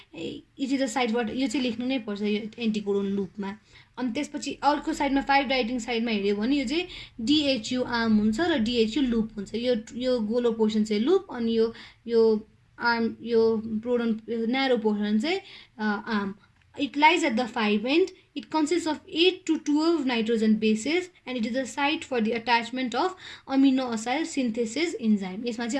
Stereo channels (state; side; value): identical; both; correlation 1.00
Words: इट इज द साइडबाट यो चाहिँ लेख्नु नै पर्छ यो एन्टिकोडोन लुपमा अनि त्यसपछि अर्को साइडमा 5 राइटिङ साइडमा हेऱ्यो भने यो चाहिँ डिएचयु आर्म हुन्छ र डिएचयु लुप हुन्छ यो गोलो पोर्सन चाहिँ लुप अनि यो आर्म यो प्रोडन न्यारो पोर्सन चाहिँ arm It lies at the 5 end. It consists of 8 to 12 nitrogen bases and it is a site for the attachment of amino acyl synthesis enzyme. यसमा